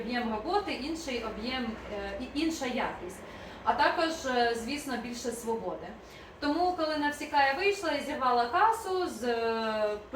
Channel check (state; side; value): identical; both; correlation 1.00